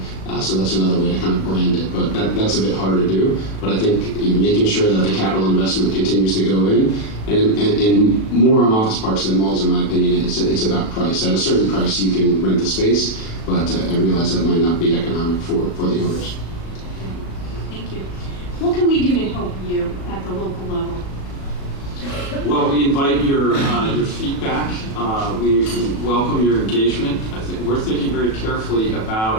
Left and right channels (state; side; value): late; right; 37 ms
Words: So that's another way to kind of brand it, but that's a bit harder to do. But I think making sure that the capital investment continues to go in, and more on office parks than malls, in my opinion, it's about price. At a certain price, you can rent the space, but I realize that might not be economic for the owners. Thank you. What can we do to help you at the local level? Well, we invite your feedback. We welcome your engagement. We're thinking very carefully